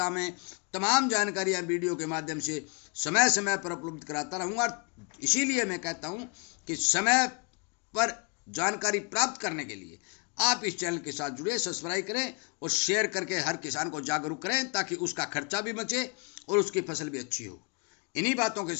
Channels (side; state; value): right; quieter; 33.5 dB